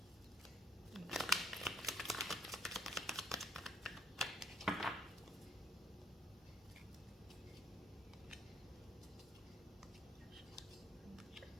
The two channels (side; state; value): both; normal; correlation 0.67